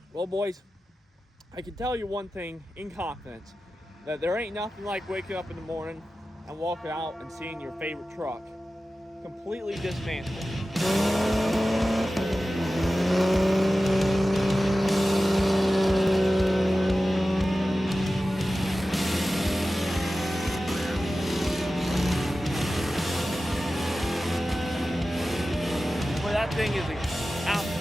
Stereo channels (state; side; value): normal; both; correlation 0.94